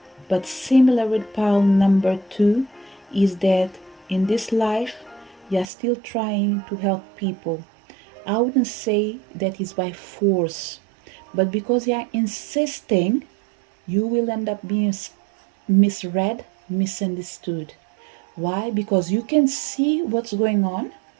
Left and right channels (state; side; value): drops out; left; at 5.7 s